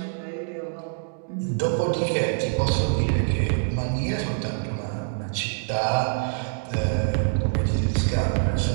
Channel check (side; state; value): left; silent; digital silence